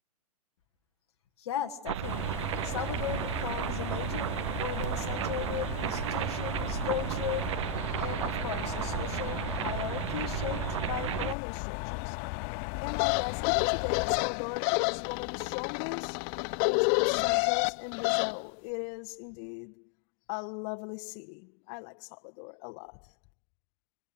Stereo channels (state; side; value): drops out; right; at 11.4 s